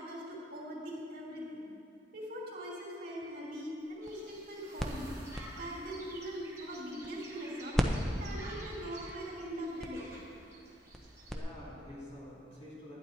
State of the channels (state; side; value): normal; both; correlation 0.72